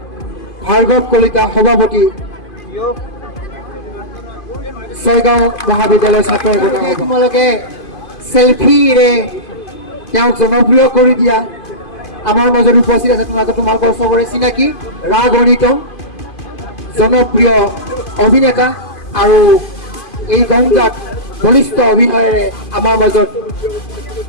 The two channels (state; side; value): late; right; 2.5 ms